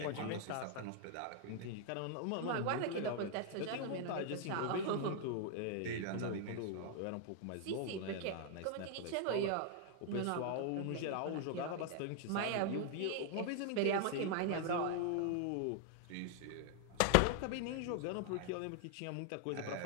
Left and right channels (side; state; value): both; different; correlation 0.00